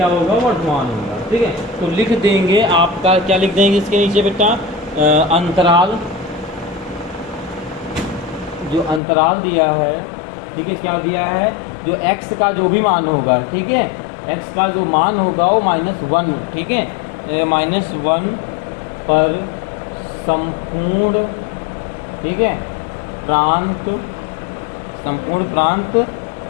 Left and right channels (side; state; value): right; drops out; at 9.0 s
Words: होगा, वर्धमान होगा, ठीक है। तो लिख देंगे आपका, क्या लिख देंगे इसके नीचे बेटा, अंतराल, जो अंतराल दिया है, ठीक है, क्या दिया है, जो x का जो भी मान होगा, ठीक है, x का जो मान होगा वो -1, ठीक है, -1 पर संपूर्ण, ठीक है, प्रांत, संपूर्ण प्रांत